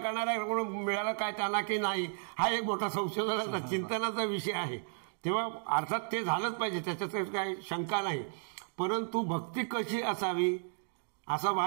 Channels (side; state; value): left; silent; digital silence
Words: मिळालं काय त्यांना की नाही हा एक मोठा संशोधनाचा चिंतनाचा विषय आहे. तेव्हा अर्थात ते झालंच पाहिजे, त्याच्यात काही शंका नाही. परंतु भक्ती कशी असावी असा